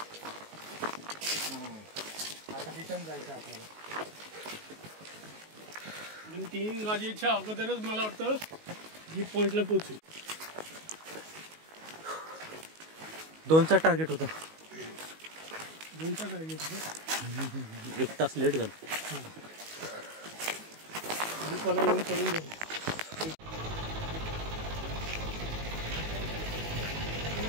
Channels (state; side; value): late; left; 19 ms